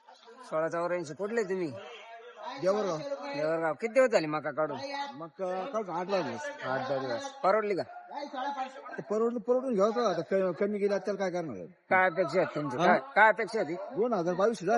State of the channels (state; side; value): identical; both; correlation 1.00